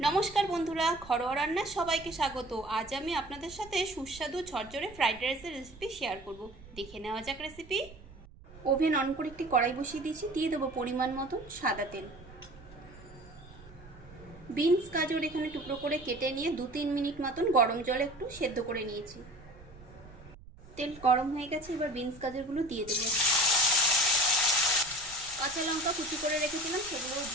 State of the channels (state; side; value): noise; right; rumble, 20 dB below the sound